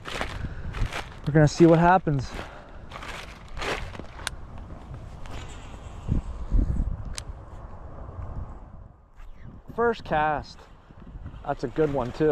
we're gonna see what happens. First cast. That's a good one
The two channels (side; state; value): both; identical; correlation 1.00